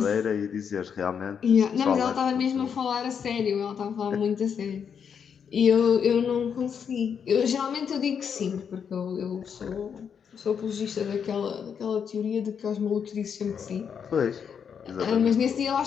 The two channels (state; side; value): quieter; right; 7.2 dB